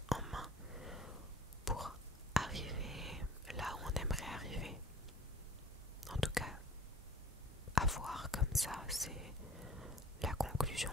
en main pour arriver là où on aimerait arriver. En tout cas, à voir comme ça, c'est la conclusion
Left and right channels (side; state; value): both; normal; correlation 0.48